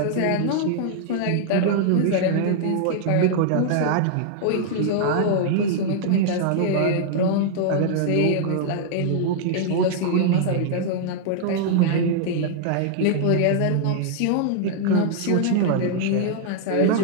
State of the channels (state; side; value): different; both; correlation -0.01